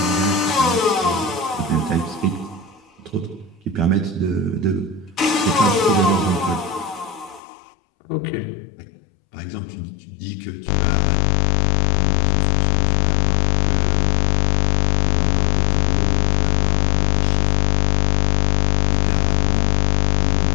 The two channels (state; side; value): drops out; right; at 7.4 s